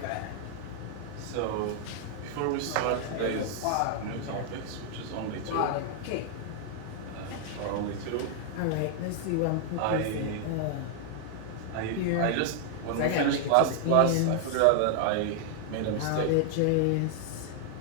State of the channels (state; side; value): different; both; correlation 0.00